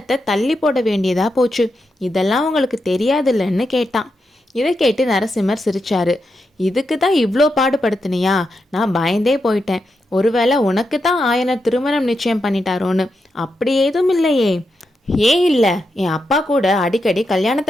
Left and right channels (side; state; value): both; normal; correlation 0.86